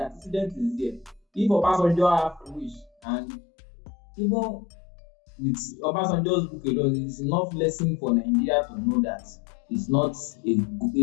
antecedent is there. If Obasanjo have wish, and even with Obasanjo's book alone, it's enough lesson for Nigeria to know that it's not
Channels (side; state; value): right; drops out; at 2.9 s